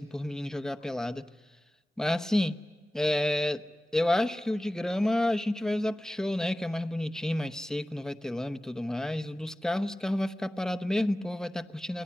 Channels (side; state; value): both; normal; correlation 0.96